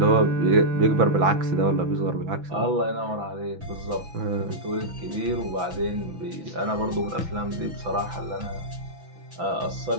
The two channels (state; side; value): late; left; 6.0 ms